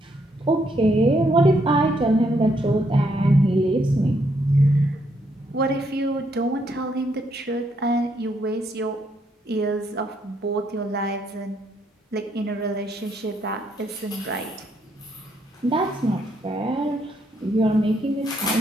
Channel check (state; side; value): normal; both; correlation 0.74